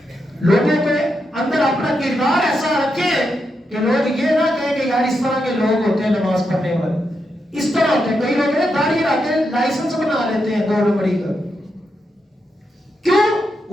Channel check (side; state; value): both; normal; correlation 0.84